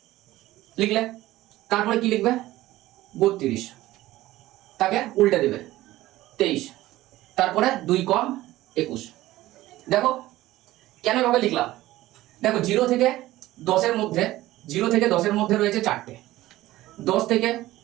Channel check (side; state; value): left; quieter; 16.4 dB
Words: লিখলে। তারপরে কি লিখবে? 32, তাকে উল্টে দেবে 23, তারপরে 2 কম 21। দেখো কেন এভাবে লিখলাম? দেখো 0 থেকে 10-এর মধ্যে, 0 থেকে 10-এর মধ্যে রয়েছে 4টে, 10 থেকে